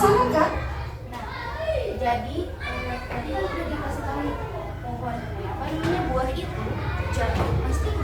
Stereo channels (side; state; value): both; identical; correlation 1.00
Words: kan? Jadi tadi kan udah dikasih tahu nih, pohon apa namanya, buah itu jatuh pasti ke